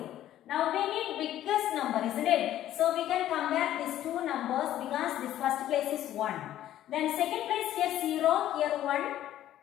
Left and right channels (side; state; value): right; quieter; 12.6 dB